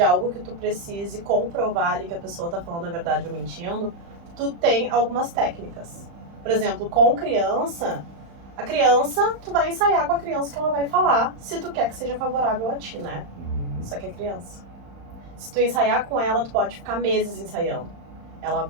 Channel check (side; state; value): left; late; 35 ms